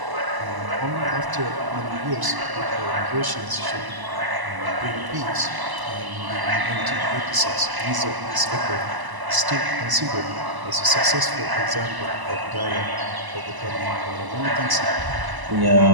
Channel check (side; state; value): left; late; 1.0 ms